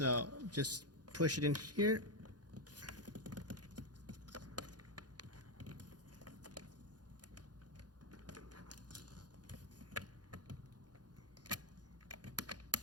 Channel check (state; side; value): late; left; 0.69 ms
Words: just push it in here.